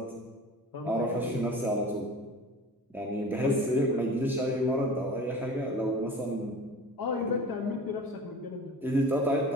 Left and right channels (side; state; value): both; normal; correlation 0.39